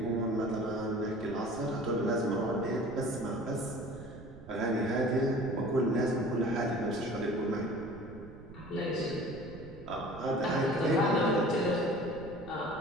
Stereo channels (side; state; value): right; noise; rumble, 17 dB below the sound